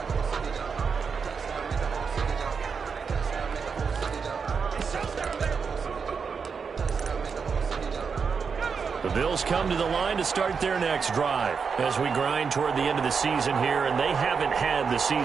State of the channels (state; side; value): quieter; left; 5.8 dB